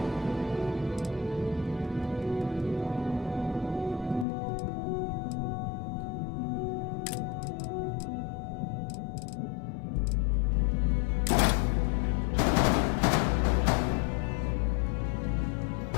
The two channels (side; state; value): right; drops out; at 4.2 s